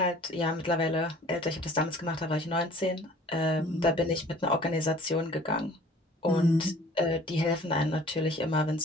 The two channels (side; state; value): both; normal; correlation 0.50